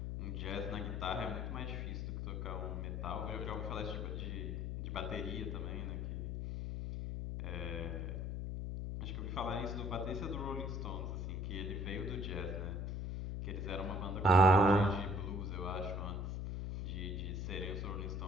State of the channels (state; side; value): noise; left; hum, 2 dB below the sound